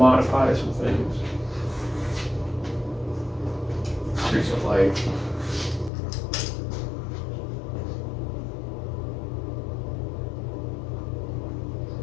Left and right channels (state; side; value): drops out; right; at 5.9 s